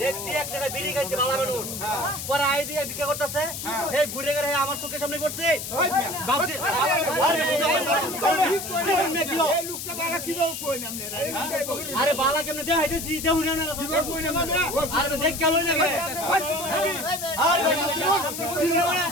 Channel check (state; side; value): noise; left; hiss, 7 dB below the sound